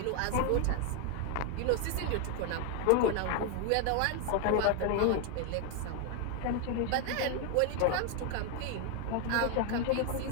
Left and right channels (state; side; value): different; both; correlation 0.01